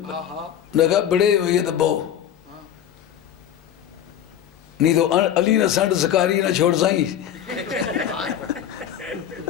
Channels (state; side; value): quieter; right; 10.1 dB